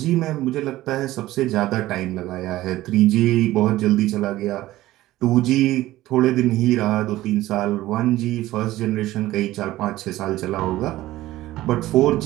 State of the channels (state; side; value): quieter; left; 16.1 dB